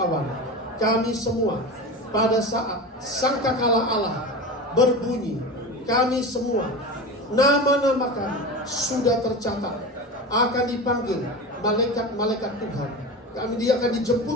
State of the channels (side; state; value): both; normal; correlation 0.27